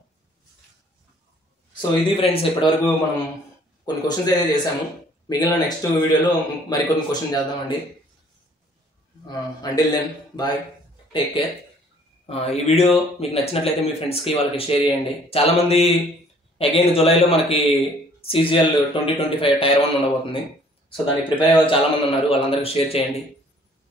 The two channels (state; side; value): normal; both; correlation 0.58